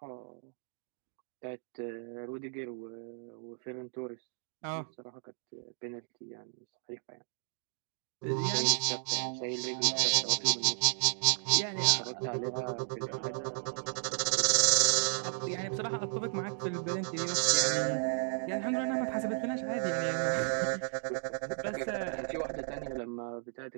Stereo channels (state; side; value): silent; left; digital silence